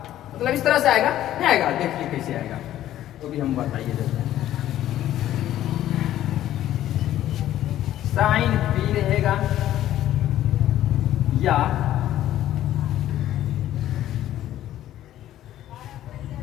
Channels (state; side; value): quieter; right; 12.8 dB